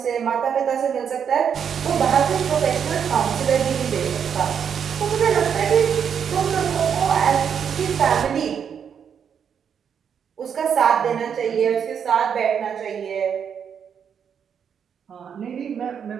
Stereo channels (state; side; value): quieter; left; 7.6 dB